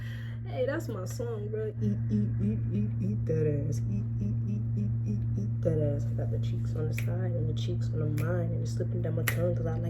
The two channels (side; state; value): both; identical; correlation 1.00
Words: Hey, that's my song, bro. Eat that ass. Eat that ass. I got the cheeks on the side and the cheeks on the mind, and it's slipping down my tongue because I